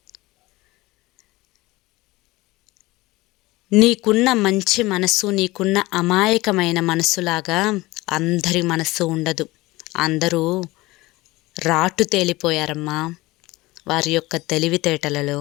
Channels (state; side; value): quieter; right; 20.3 dB